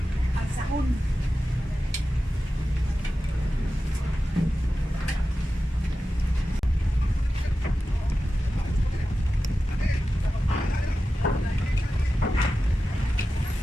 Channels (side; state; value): both; normal; correlation 0.93